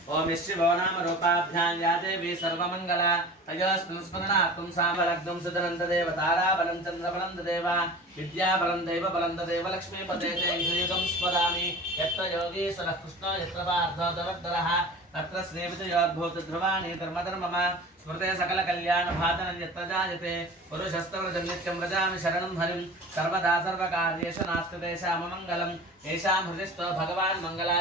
ఓం యశ్రీ భవనామ రూపాభ్యాం యా దేవి సర్వమంగళ తయోస్మిన్ స్మరణాత్మం సామలగ్నం సుదనంతదేవ తారాబలం చంద్రబలం తదేవ విద్యాబలం దైవబలం తదేవ లక్ష్మీపదే యుగం స్మరామి. యత్ర యోగీశ్వరః కృష్ణో యత్ర పార్థో దరద్దరః अत्र स्नेहविजयोद्भूतध्रुवाणि धर्मधर्मम स्मृते सकलकल्याणभाजनं यत्र जायते पुरुषस्तवृजं नित्यं व्रजामि शरणं हरिं सर्वदा सर्वकार्येषु नास्ति तेषाममङ्गलम् येषां हृदिस्थो भगवान्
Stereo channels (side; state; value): both; normal; correlation 0.38